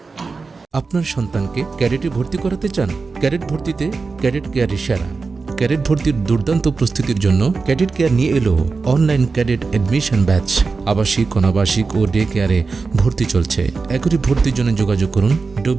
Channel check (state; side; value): quieter; left; 4.4 dB